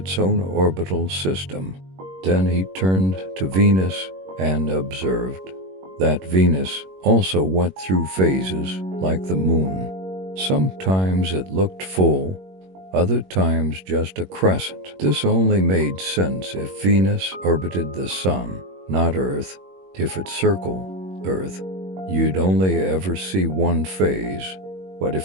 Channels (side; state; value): left; late; 21 ms